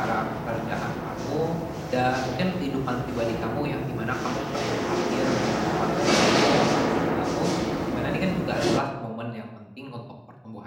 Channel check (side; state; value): both; identical; correlation 1.00